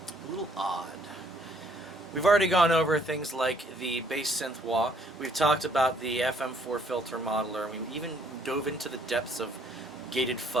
a little odd. We've already gone over things like the bass synth wah. We've talked about the FM4 filter modeler. We even dove into the depths of gated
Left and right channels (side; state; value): both; normal; correlation 0.65